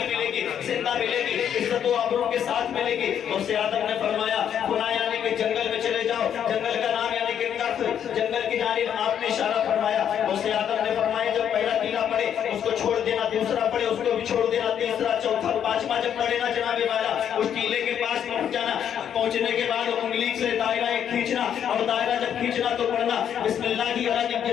ملے گی، زندہ ملے گی، عزت و آبرو کے ساتھ ملے گی۔ غوث اعظم نے فرمایا خدا یعنی کہ جنگل میں چلے جاؤ، جنگل کا نام یعنی کہ کف، جنگل کی جانب آپ نے اشارہ فرمایا۔ غوث اعظم نے فرمایا جب پہلا ٹیلا پڑے اس کو چھوڑ دینا، دوسرا پڑے اس کو بھی چھوڑ دینا، تیسرا چوتھا پانچواں جب پڑے نا جناب والا اس ٹیلے کے پاس پہنچ جانا، پہنچنے کے بعد انگلی سے دائرہ کھینچنا اور دائرہ جب کھینچنا تو پڑھنا بسم اللہ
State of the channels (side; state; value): right; quieter; 9.1 dB